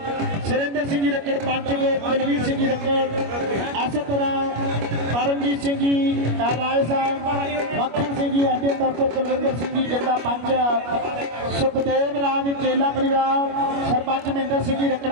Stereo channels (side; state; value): left; late; 25 ms